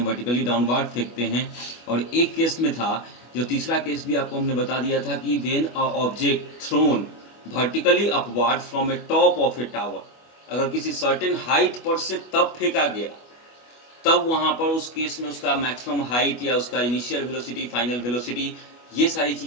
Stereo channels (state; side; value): late; right; 25 ms